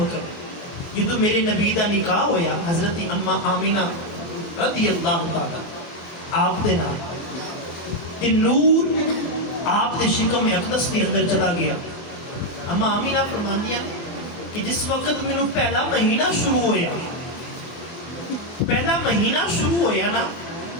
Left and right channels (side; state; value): right; late; 24 ms